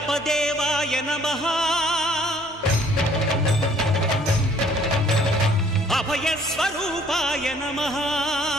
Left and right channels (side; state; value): both; normal; correlation 0.60